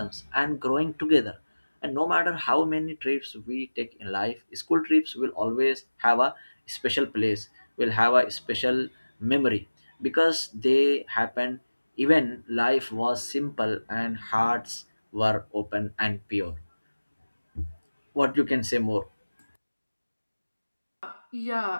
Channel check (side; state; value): both; inverted; correlation -1.00